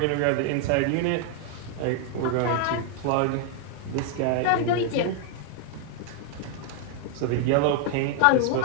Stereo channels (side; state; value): both; different; correlation 0.00